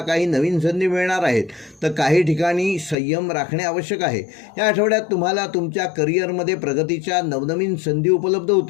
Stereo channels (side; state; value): right; drops out; at 3.0 s